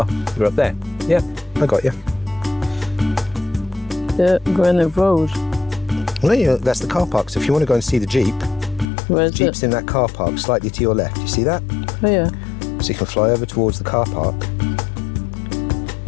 You're up there. Yeah, I got you. The Grenade Road. Well, yeah, that's the car park. So if you want to go and see the Jeep, Where's the Jeep's in that car park, slightly to your left. You see that? Oh, yeah. So you can fly over towards the car park.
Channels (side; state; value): right; drops out; at 8.9 s